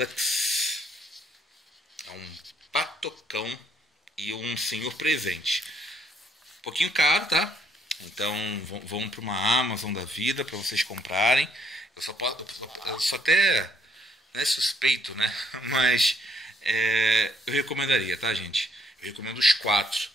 é um patocão e um senhor presente. Um pouquinho caro, tá? Então vão para uma Amazon da vida para vocês comprarem. Eu só até suspeito, né? Mas eu recomendaria, tá, gente? Eu recomendo os 4.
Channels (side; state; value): both; normal; correlation 0.68